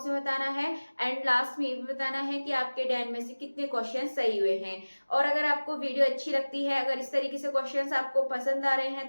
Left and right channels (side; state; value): both; inverted; correlation -1.00